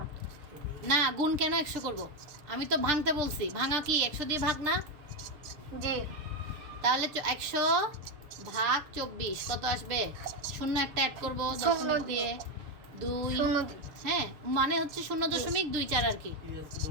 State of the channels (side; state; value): left; late; 6.6 ms